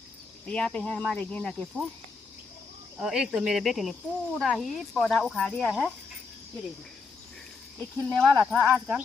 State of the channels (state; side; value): quieter; right; 4.5 dB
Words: यहाँ पे है हमारे गेंदा के फूल और एक तो मेरे बेटे ने पूरा ही पौधा उखाड़ दिया है। ये देखिए, ये खिलने वाला था आजकल,